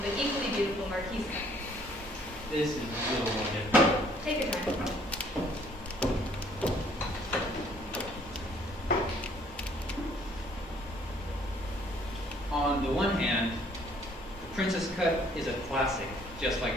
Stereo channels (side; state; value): both; normal; correlation 0.61